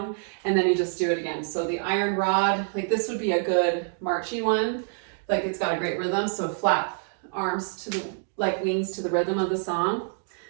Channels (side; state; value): left; silent; digital silence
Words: and then you just do it again. So the iron rod, like this would be a good marchy one. Like it's got a great rhythm. So flap arms like wings to the rhythm of the song,